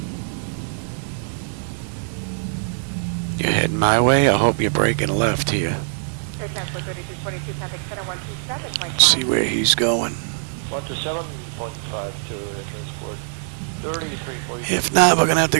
You're heading my way. I hope you're breaking left here. Air Transport 3342, traffic center 127.5. Let's see where he's going. 127.52, Air Transport 3342. If not, we're going to have to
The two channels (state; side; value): silent; left; digital silence